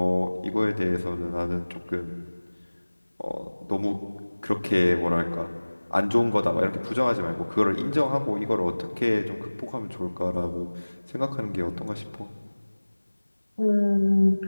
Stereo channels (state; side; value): inverted; both; correlation -1.00